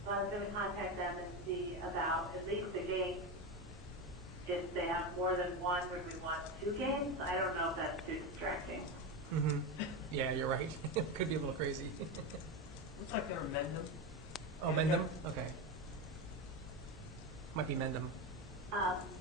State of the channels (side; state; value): both; normal; correlation 0.16